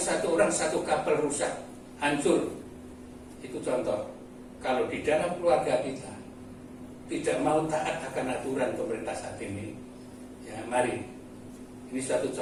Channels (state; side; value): identical; both; correlation 1.00